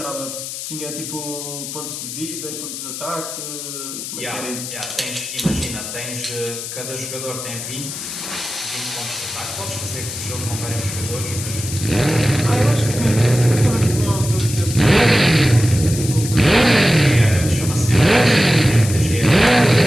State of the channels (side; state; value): left; noise; hiss, 8 dB below the sound